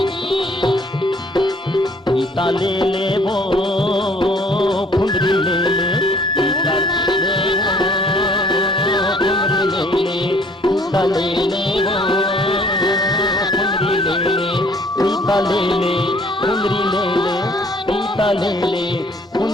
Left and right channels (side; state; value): both; normal; correlation 0.58